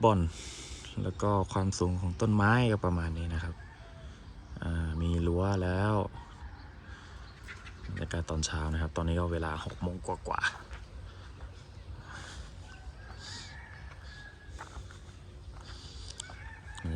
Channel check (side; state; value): both; identical; correlation 1.00